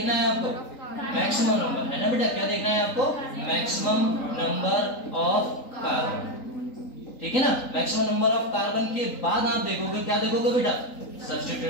है आपको, मैक्सिमम नंबर, है ना बेटा, क्या देखना है आपको, मैक्सिमम नंबर ऑफ कार्बन, ठीक है ना। मैक्सिमम नंबर ऑफ कार्बन के बाद आप देखोगे, क्या देखोगे बेटा,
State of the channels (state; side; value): late; right; 3.9 ms